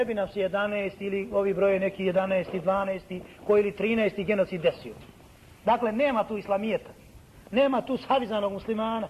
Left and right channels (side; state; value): both; identical; correlation 1.00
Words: bi nam se 11 ili ovi broje neki 11, 12 koji ili 13 genocid desio. Dakle, nema tu islamijeta, nema tu savizanog muslimana.